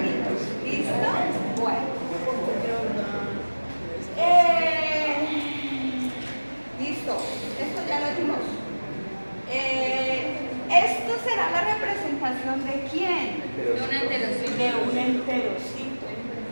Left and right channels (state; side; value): inverted; both; correlation -1.00